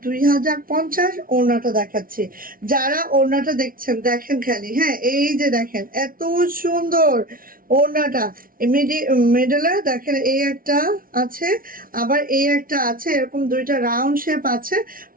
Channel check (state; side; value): late; left; 0.42 ms